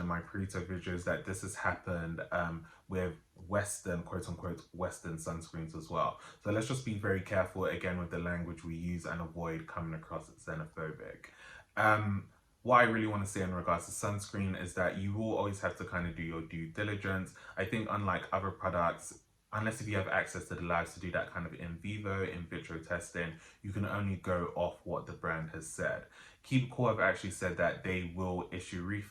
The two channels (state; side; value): identical; both; correlation 1.00